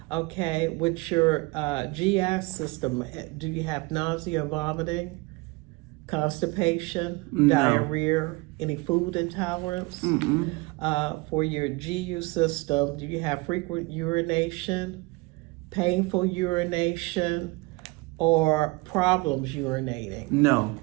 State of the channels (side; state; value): left; quieter; 24.9 dB